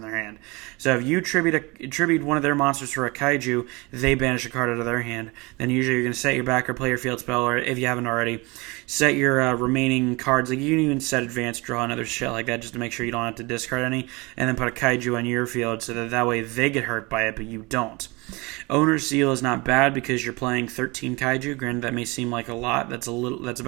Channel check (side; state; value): left; quieter; 25.3 dB